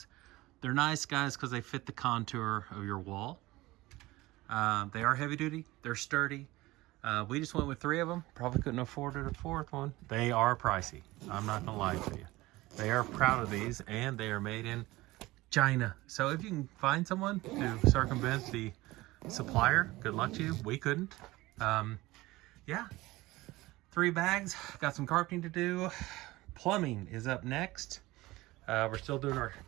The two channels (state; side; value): quieter; left; 19.3 dB